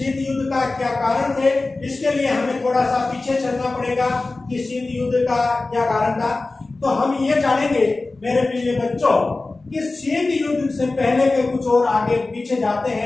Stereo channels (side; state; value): right; quieter; 3.3 dB